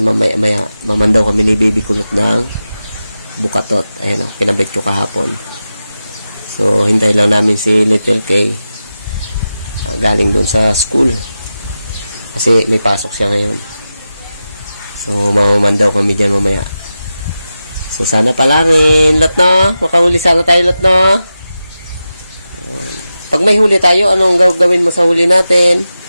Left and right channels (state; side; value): inverted; both; correlation -0.92